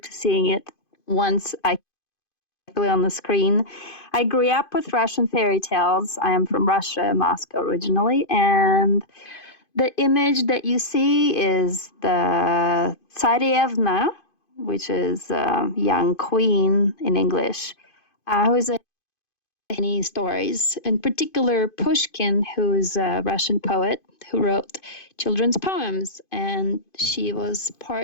to seeing it once I play on the screen. I grew up with Russian fairy tales. I am from Russia, Moscow originally, and the image that you see is the Tsarevna, which is a young queen in English, who is many stories, in particular Pushkin, who is a Russian poet who wrote children's poems, and she was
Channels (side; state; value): right; late; 2.5 ms